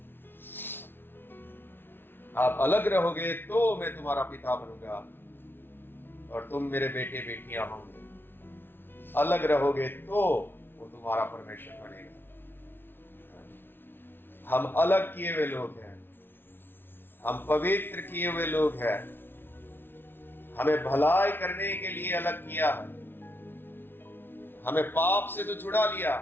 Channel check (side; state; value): right; late; 0.10 ms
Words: आप अलग रहोगे तो मैं तुम्हारा पिता बनूंगा और तुम मेरे बेटे बेटियां होंगे। अलग रहोगे तो वो तुम्हारा परमेश्वर बनेगा। हम अलग किए हुए लोग हैं, हम पवित्र किए हुए लोग हैं। हमें भलाई करने के लिए अलग किया है। हमें पाप से तो छुड़ा लिया,